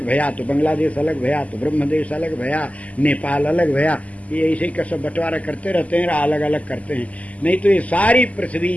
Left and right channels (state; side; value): late; right; 0.071 ms